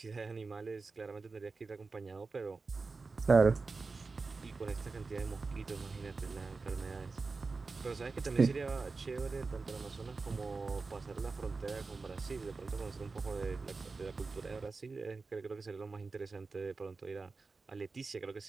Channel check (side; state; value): left; quieter; 4.1 dB